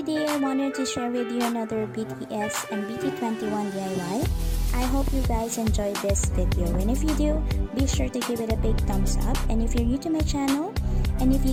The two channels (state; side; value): identical; both; correlation 1.00